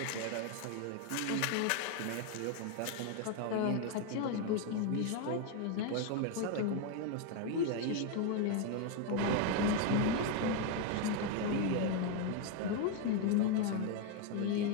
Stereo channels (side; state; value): both; different; correlation 0.01